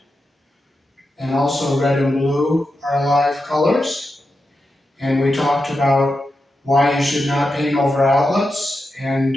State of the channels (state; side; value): normal; both; correlation 0.88